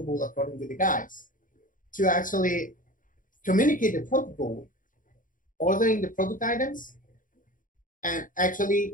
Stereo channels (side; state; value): right; late; 0.39 ms